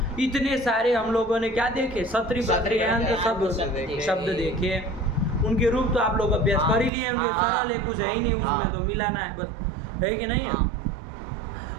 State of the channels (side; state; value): left; drops out; at 6.9 s